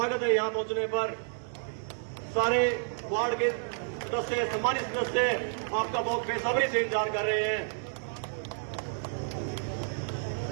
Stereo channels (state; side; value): silent; left; digital silence